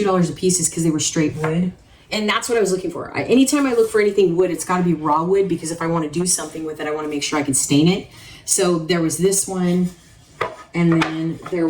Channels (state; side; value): identical; both; correlation 1.00